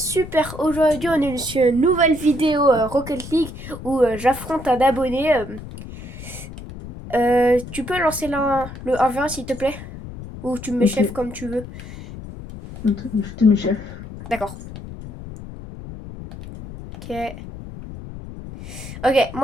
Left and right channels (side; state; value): left; noise; rumble, 12 dB below the sound